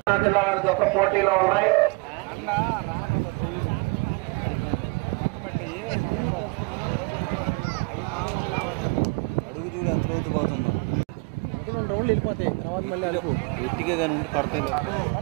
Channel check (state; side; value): quieter; left; 28.9 dB